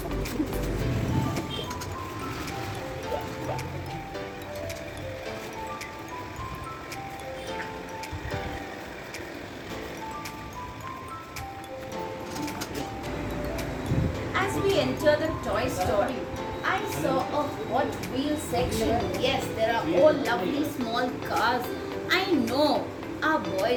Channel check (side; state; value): both; identical; correlation 1.00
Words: As we enter the toy store, I saw a Hot Wheels section. Yes, there are all lovely small cars. I know our